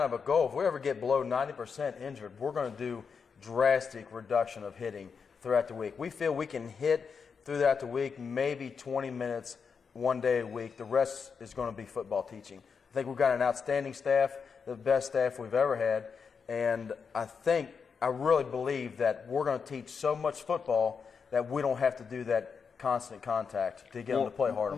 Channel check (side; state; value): right; quieter; 5.9 dB